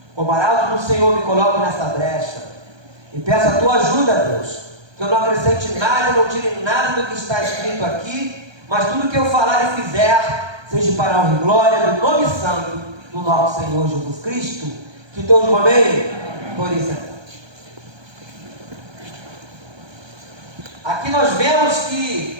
Como arauto do Senhor, me coloco nessa brecha e peço a tua ajuda, Deus, que eu não acrescente nada, não tire nada do que está escrito aqui, mas tudo que eu falar e fizer seja para a honra e glória do nome santo do nosso Senhor Jesus Cristo. Que todos digam amém? Por isso. Aqui nós vemos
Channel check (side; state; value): left; late; 1.2 ms